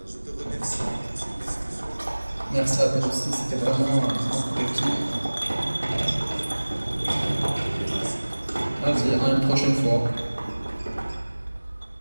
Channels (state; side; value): inverted; both; correlation -1.00